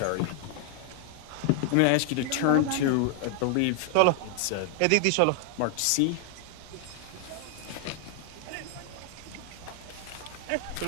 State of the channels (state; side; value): different; both; correlation 0.00